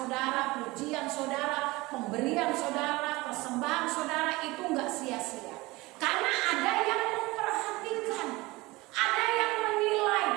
pujian saudara, pemberian saudara, persembahan saudara itu nggak sia-sia. Karena ada yang memperhatikan, ada yang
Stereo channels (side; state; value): left; quieter; 21.6 dB